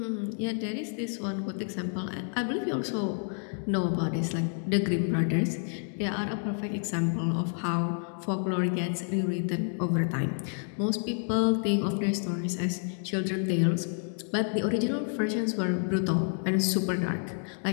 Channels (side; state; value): right; silent; 58 dB below the other